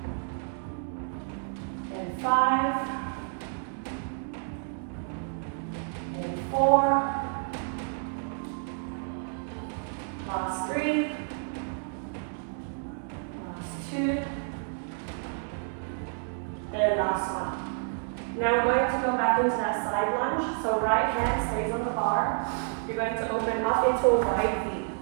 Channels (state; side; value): silent; left; 58 dB below the other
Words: And 5. And 4. Last 3. Last 2. And last one. Now we're going to go back into that side lunge. So right hand stays on the bar. You're going to open up into a wide V.